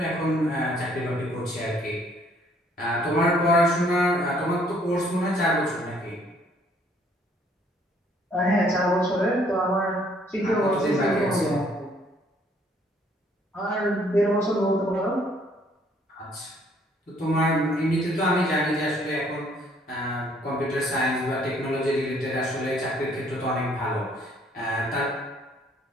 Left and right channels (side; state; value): both; normal; correlation 0.63